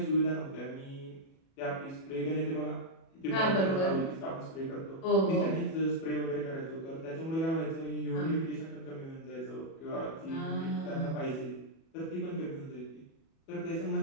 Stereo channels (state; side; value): late; right; 37 ms